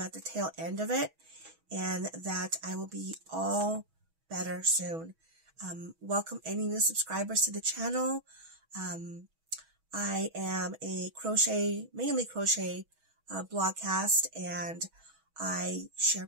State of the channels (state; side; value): late; left; 6.2 ms